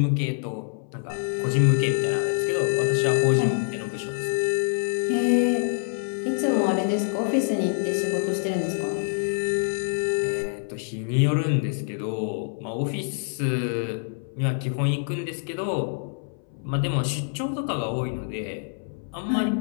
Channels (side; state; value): right; silent; 61 dB below the other